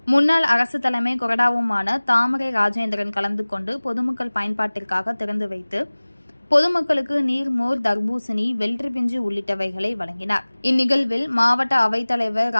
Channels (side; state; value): both; inverted; correlation -1.00